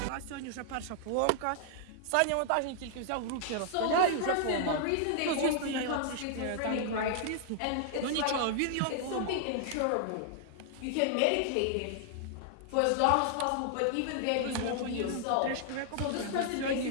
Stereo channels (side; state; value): both; different; correlation 0.00